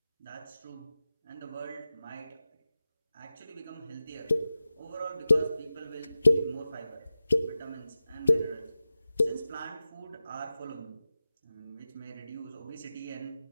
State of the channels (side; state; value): both; inverted; correlation -0.94